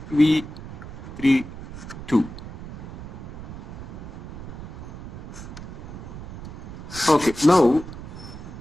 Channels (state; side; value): noise; right; rumble, 11 dB below the sound